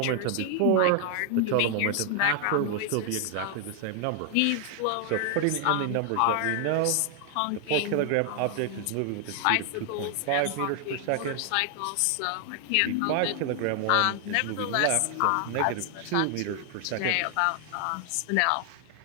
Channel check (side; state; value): both; different; correlation 0.00